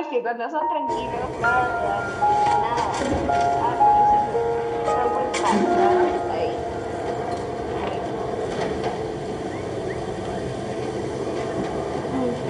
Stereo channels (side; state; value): both; identical; correlation 1.00